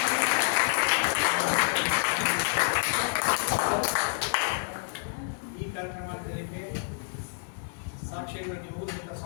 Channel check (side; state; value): right; silent; digital silence